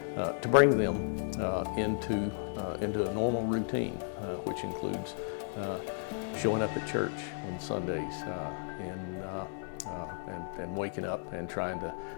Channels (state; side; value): silent; right; digital silence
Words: bring them into a normal routine, which includes showing up at church on Sundays and waking up and trying to